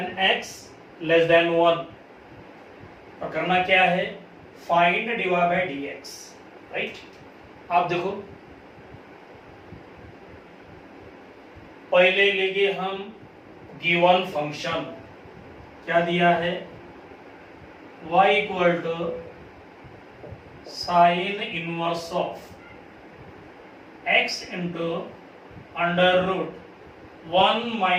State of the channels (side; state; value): both; identical; correlation 1.00